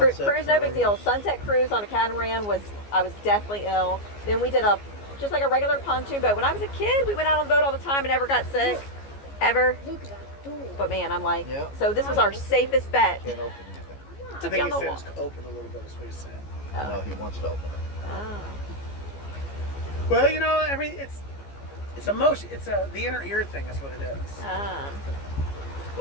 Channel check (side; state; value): right; late; 14 ms